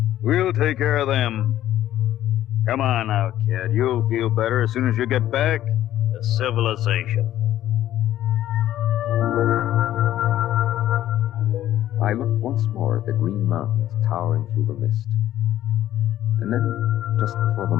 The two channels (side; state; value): right; quieter; 12.9 dB